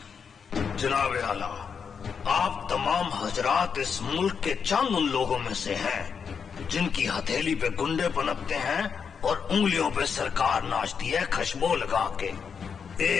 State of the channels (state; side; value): quieter; right; 6.4 dB